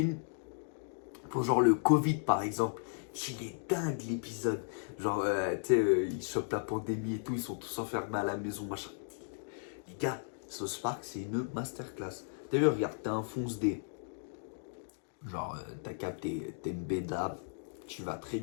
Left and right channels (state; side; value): silent; right; digital silence